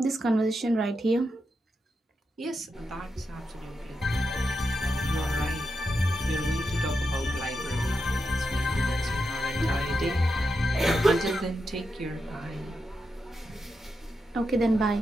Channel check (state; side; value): normal; both; correlation 0.87